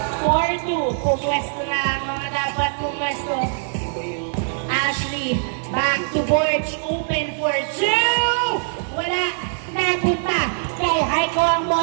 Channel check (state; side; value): silent; left; 64 dB below the other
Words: 4-2. Pumwesto na ang mga dapat pumwesto. Ashley. Back to Borge. Open for 2. Wala. Napunta kay Haiko ang